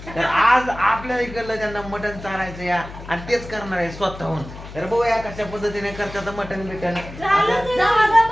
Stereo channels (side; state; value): left; noise; hum, 14 dB below the sound